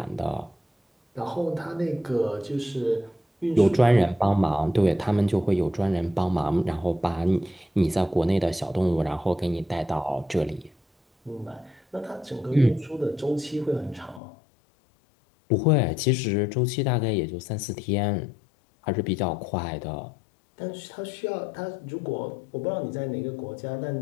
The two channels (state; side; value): drops out; right; at 14.2 s